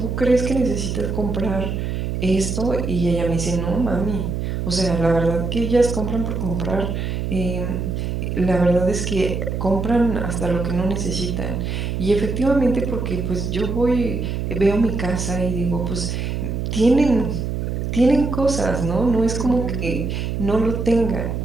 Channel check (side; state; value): right; noise; hum, 2 dB below the sound